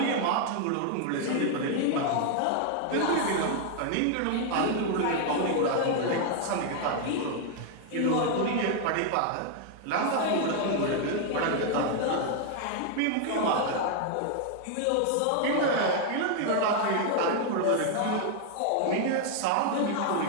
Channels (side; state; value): both; different; correlation 0.00